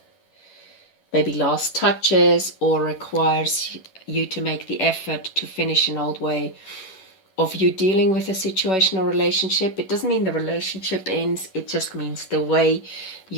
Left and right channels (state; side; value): late; right; 11 ms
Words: maybe last touches, or requires you to make the effort to finish an old way of you dealing with a situation or relationship. It doesn't mean the relationship ends, it just means the way